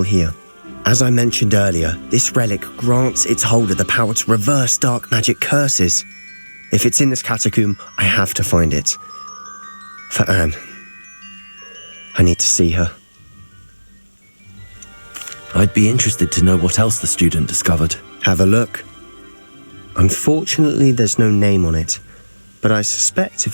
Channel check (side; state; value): both; inverted; correlation -1.00